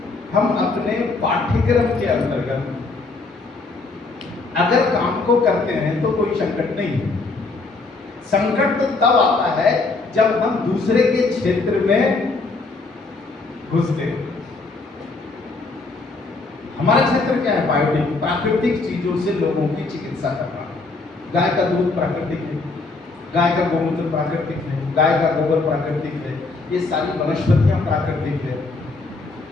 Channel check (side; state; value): right; quieter; 3.7 dB